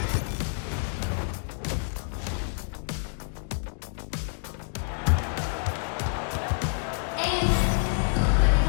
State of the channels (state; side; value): silent; right; digital silence